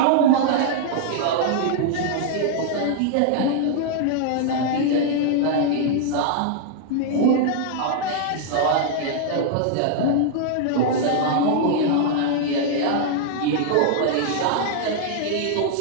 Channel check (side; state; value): both; different; correlation -0.01